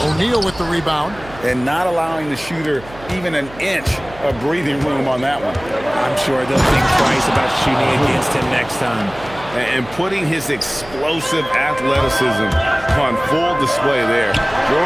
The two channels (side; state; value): right; noise; hum, 18 dB below the sound